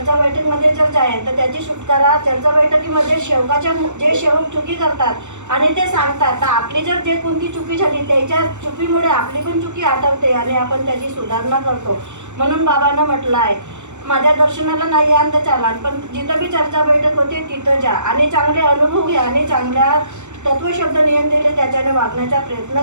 बैठकीमध्ये जर जाईल तर त्याची सुटकारा चर्चा बैठकीमध्ये सेवकाच्या जे सेवक चुकी करतात आणि ते सांगतात तर आपली जर जे कोणती चुकी झाली त्याच्या चुकीमुळे आपली पण चुकी आठवते आणि आपण त्याची सुधारणा करतो. म्हणून बाबांना म्हटलं आहे माझ्या दर्शनाला नाही याल तर चालाल पण जिथं बी चर्चा बैठक होते तिथं जा आणि चांगले अनुभव घ्या आणि चांगल्या तत्वशब्द नियम दिले त्याच्याने वागण्याचा प्रयत्न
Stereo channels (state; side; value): late; left; 0.84 ms